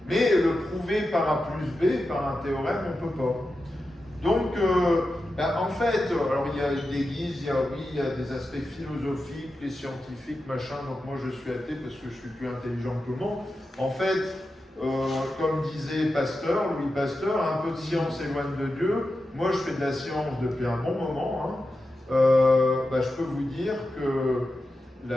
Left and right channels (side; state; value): both; normal; correlation 0.91